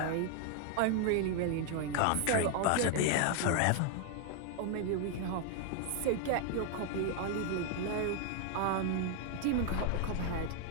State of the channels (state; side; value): different; both; correlation 0.00